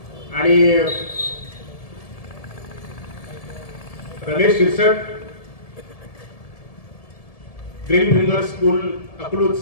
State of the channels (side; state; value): right; late; 1.7 ms